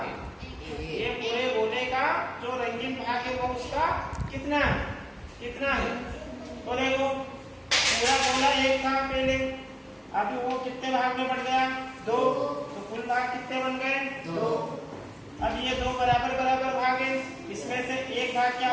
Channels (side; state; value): both; identical; correlation 1.00